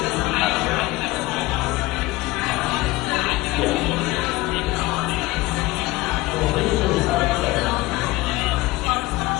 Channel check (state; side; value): quieter; right; 19.9 dB